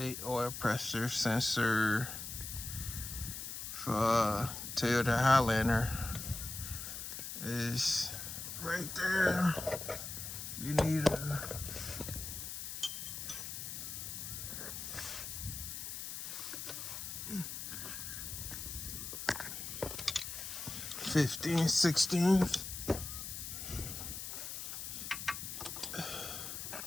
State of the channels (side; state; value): left; noise; hiss, 6 dB below the sound